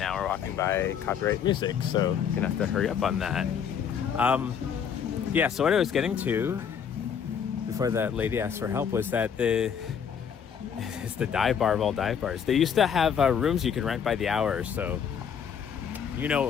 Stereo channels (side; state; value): right; quieter; 7.6 dB